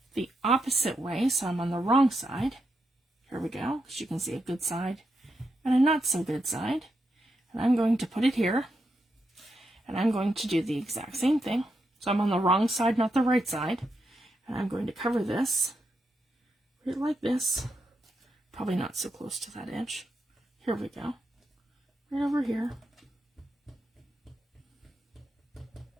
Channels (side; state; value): both; normal; correlation 0.83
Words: the opposite way, so I'm on the wrong side. Here we go. As you can see, a good side and a not so good side. And I'm going to put it here and I'm going to do the exact same thing. So I'm on the wrong side, not the right side. And I'm going to cover this right like this. Probably not so close to that edge. Here we go. Right over here.